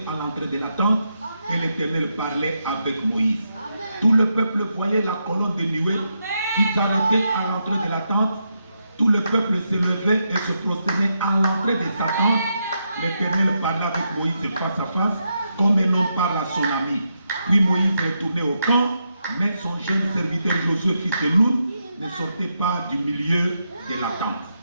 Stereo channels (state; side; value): inverted; both; correlation -0.83